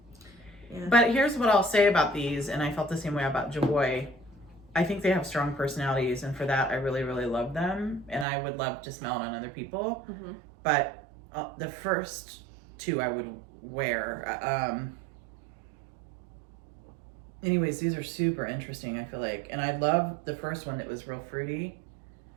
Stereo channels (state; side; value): drops out; left; at 8.2 s